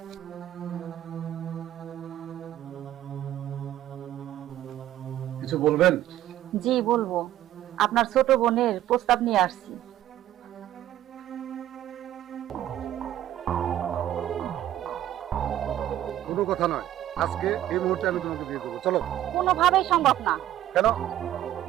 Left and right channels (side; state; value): left; quieter; 12.9 dB